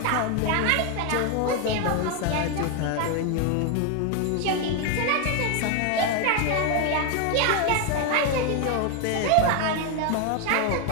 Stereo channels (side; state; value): both; different; correlation 0.01